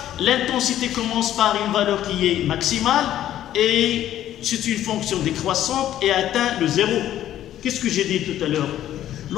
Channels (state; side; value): quieter; right; 12.2 dB